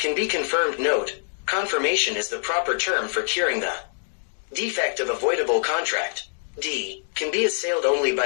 be confirmed. Note: confirmation is the proper term for curing the defect of a voidable contract. D. Can be assailed only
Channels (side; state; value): right; silent; 62 dB below the other